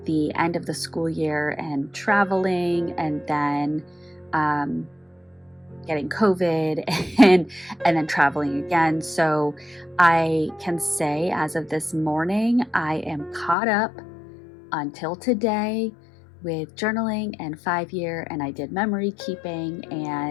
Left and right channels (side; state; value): right; drops out; at 13.6 s